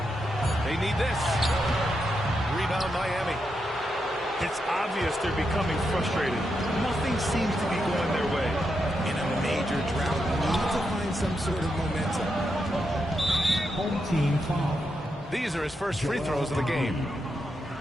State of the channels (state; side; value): normal; both; correlation 0.84